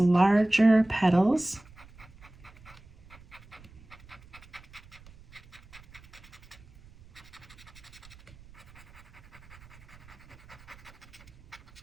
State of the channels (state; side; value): noise; right; rumble, 22 dB below the sound